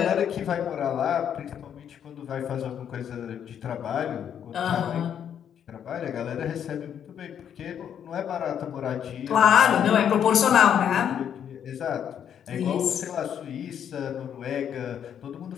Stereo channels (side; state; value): right; quieter; 8.9 dB